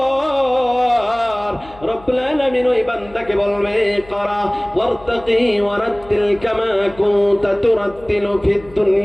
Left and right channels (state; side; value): noise; left; hum, 22 dB below the sound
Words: রব্বুল আলামিন ওই বান্দাকে বলবে করা ওয়ারতাকি ওয়ারাত্তিল কামা কুনতা তুরাত্তিলু ফিদ